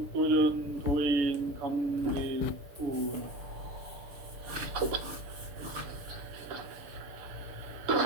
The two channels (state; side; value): late; left; 6.7 ms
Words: 도전 도인 감대구.